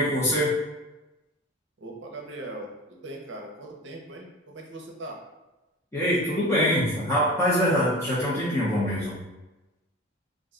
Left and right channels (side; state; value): both; normal; correlation 0.34